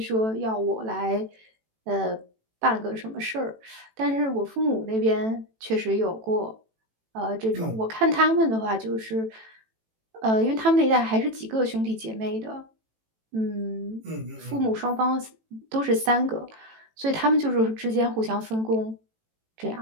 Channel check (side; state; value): left; late; 18 ms